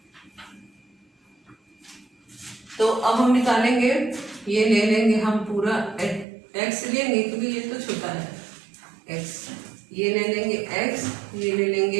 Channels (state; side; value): drops out; left; at 6.2 s